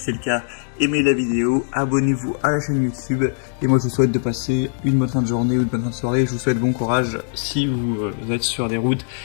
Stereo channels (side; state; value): right; silent; digital silence